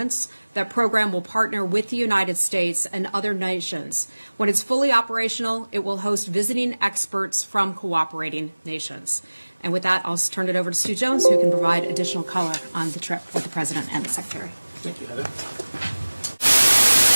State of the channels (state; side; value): inverted; both; correlation -1.00